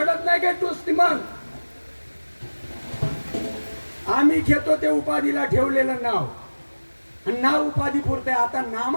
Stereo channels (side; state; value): both; inverted; correlation -1.00